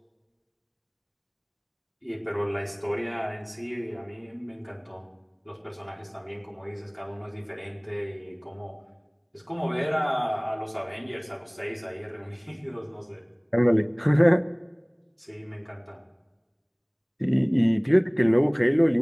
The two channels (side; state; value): both; identical; correlation 1.00